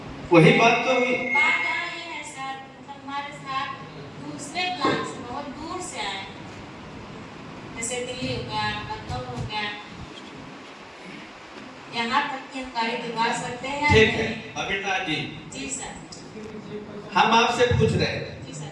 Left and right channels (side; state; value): both; identical; correlation 1.00